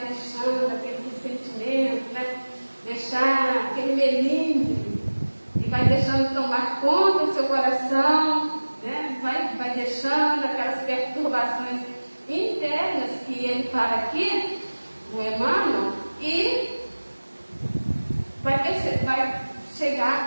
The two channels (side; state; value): both; inverted; correlation -1.00